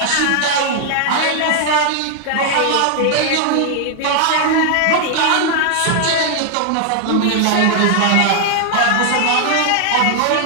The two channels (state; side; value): different; both; correlation 0.00